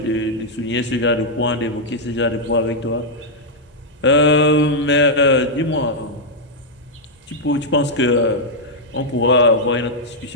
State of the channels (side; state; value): both; normal; correlation -0.03